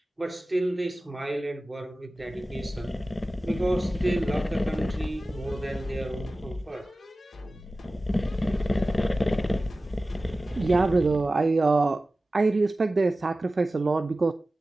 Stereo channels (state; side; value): normal; both; correlation 0.96